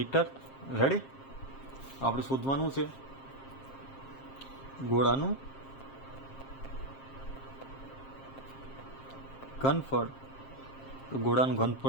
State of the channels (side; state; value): right; late; 7.5 ms